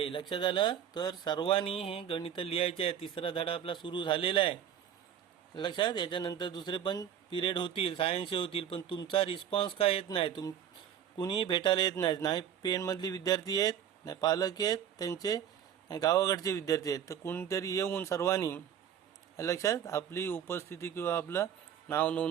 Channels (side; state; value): left; quieter; 9.3 dB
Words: लक्षात आलं. तर सर्वांनी हे गणित लिहायचे आहे. तिसरा धडा आपला सुरू झालेला आहे लक्षात. याच्यानंतर दुसरे पण पिरियड होतील सायन्सचे होतील, पण तुमचा रिस्पॉन्स काय येत नाही. कुणीही भेटायला येत नाही. नाही पेणमधली विद्यार्थी आहेत, नाही पालक आहेत त्यांचे, नाही गावाकडचे विद्यार्थी आहेत. तर कोणीतरी येऊन सर्वांनी लक्षात आपली उपस्थिती किंवा आपलं नाव